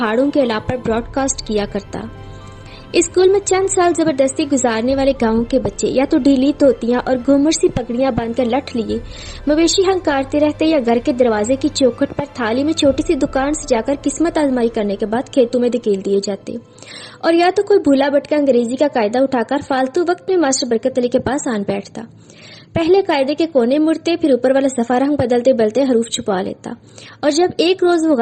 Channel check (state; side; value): identical; both; correlation 1.00